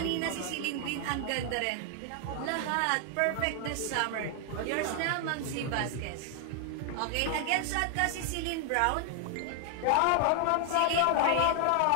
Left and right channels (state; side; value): different; both; correlation 0.00